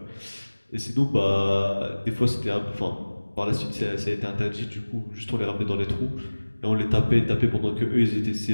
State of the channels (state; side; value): inverted; both; correlation -1.00